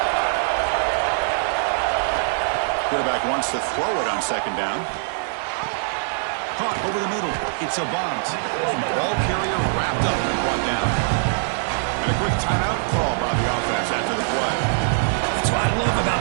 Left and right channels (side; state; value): left; silent; 62 dB below the other